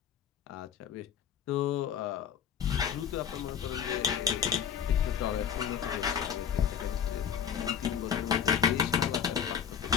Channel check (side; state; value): right; quieter; 8.0 dB